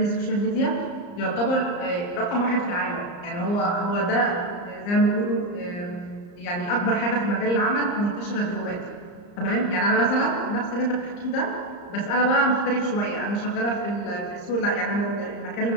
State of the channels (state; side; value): late; right; 34 ms